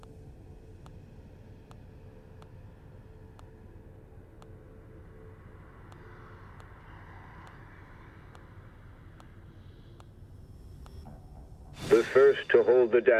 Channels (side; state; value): both; identical; correlation 1.00